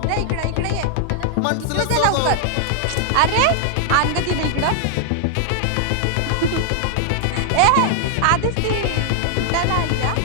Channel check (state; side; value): different; both; correlation 0.00